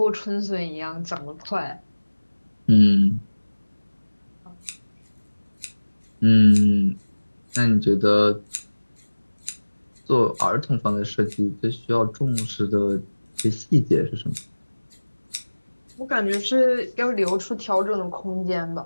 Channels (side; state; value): both; inverted; correlation -1.00